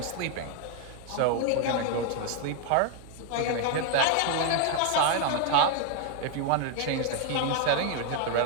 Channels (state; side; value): different; both; correlation 0.01